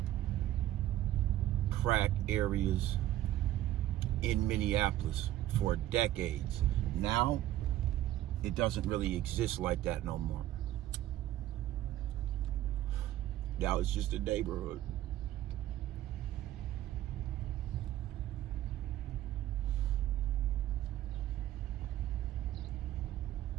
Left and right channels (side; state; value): left; quieter; 13.7 dB